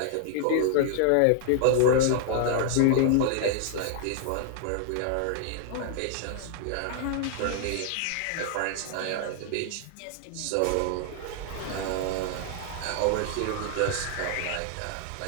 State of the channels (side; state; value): both; different; correlation 0.00